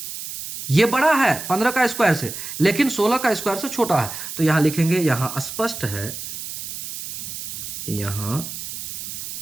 ये बड़ा है 15 का स्क्वायर से, लेकिन 16 का स्क्वायर से छोटा है। तो यहां लिखेंगे, यहां स्पष्ट है, यहां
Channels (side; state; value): right; noise; hiss, 8 dB below the sound